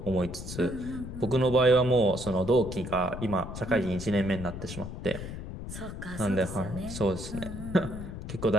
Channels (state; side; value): noise; left; rumble, 9 dB below the sound